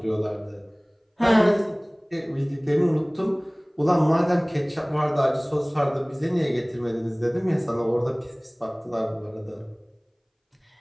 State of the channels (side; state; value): both; identical; correlation 1.00